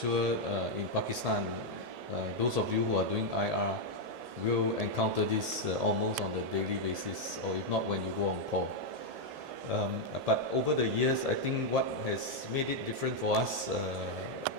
in Pakistan, those of you who are doing IR will encounter this almost on a daily basis, or if not when you go on call. But over the years, I think what has made it different for us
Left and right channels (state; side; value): late; left; 1.7 ms